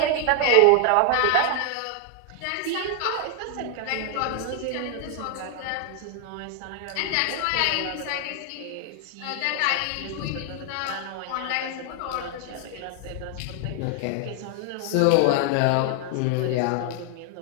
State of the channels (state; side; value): different; both; correlation 0.00